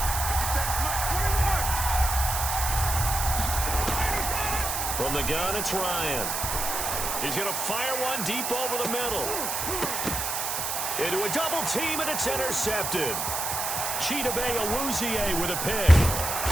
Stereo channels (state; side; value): noise; right; hiss, 2 dB below the sound